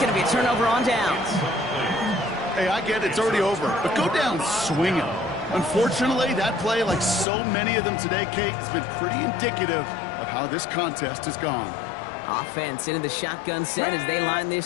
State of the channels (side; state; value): right; drops out; at 7.2 s